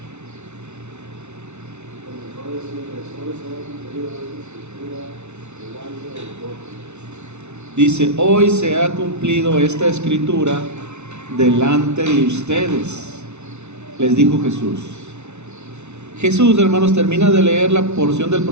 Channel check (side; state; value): left; late; 0.82 ms